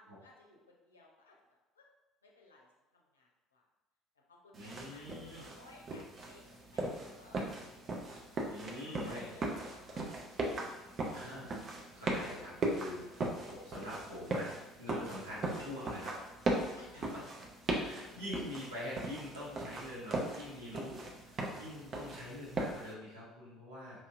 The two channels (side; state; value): both; normal; correlation 0.56